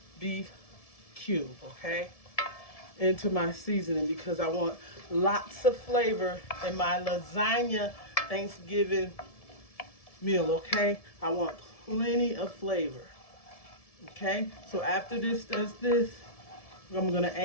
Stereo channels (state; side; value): late; right; 1.7 ms